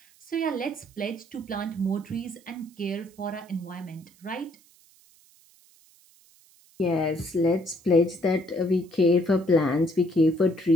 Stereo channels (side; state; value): right; noise; hiss, 29 dB below the sound